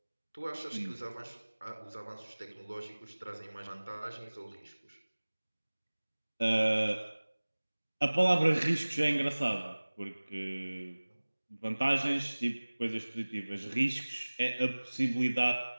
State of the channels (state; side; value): inverted; both; correlation -1.00